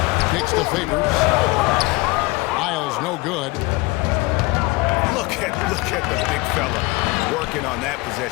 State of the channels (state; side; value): quieter; right; 23.4 dB